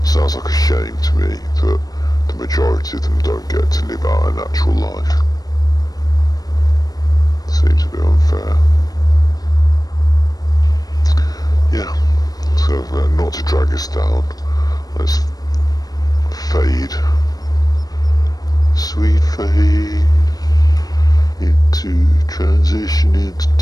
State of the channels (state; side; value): late; right; 0.18 ms